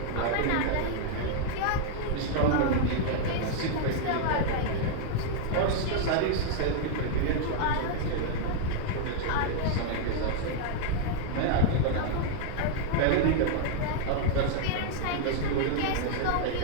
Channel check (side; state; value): both; different; correlation -0.01